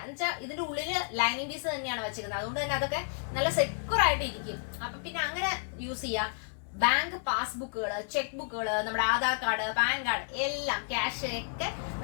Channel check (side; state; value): right; silent; digital silence